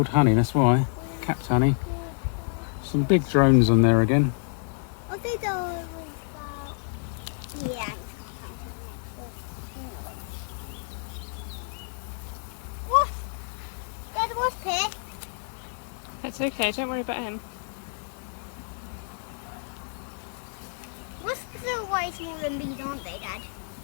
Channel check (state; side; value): silent; right; 59 dB below the other